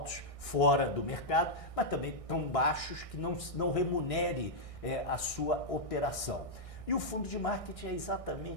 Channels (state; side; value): late; right; 1.6 ms